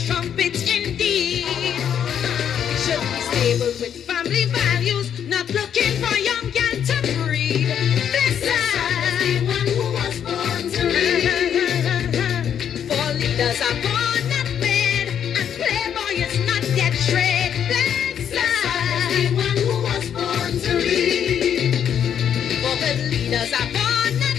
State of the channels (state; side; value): quieter; right; 8.8 dB